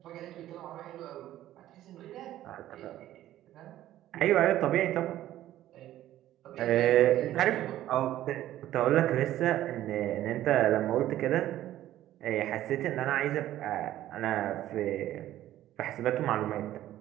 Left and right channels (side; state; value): left; quieter; 13.5 dB